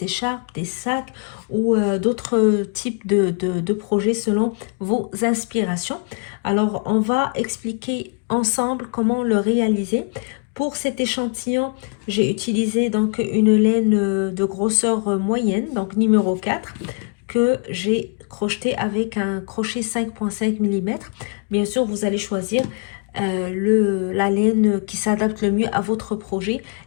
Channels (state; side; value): quieter; right; 38.6 dB